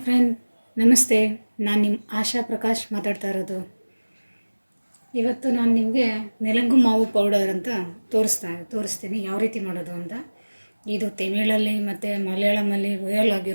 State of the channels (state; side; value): inverted; both; correlation -1.00